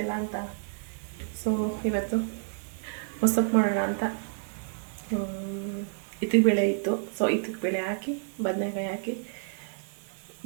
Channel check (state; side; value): silent; left; 55 dB below the other